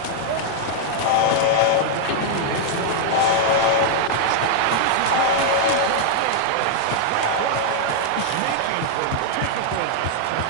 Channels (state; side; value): different; both; correlation -0.01